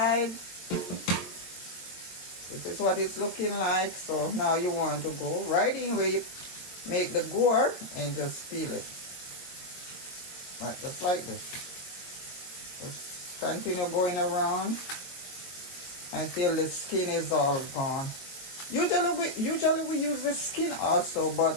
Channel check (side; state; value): right; late; 22 ms